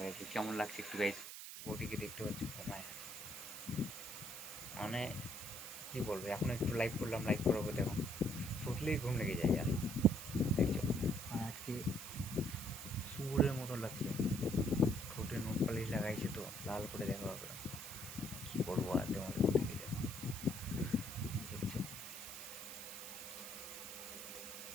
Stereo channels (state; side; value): noise; right; hiss, 9 dB below the sound